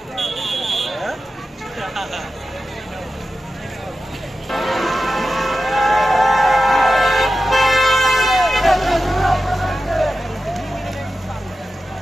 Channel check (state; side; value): normal; both; correlation 0.92